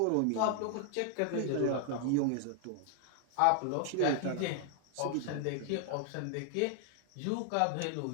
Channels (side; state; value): both; different; correlation 0.00